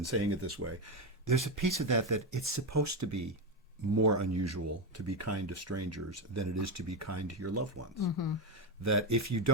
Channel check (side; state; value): both; normal; correlation 0.11